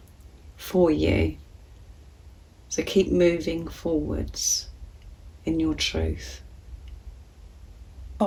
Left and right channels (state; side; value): identical; both; correlation 1.00